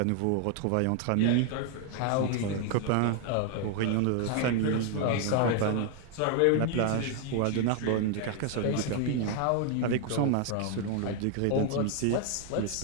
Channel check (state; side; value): different; both; correlation 0.01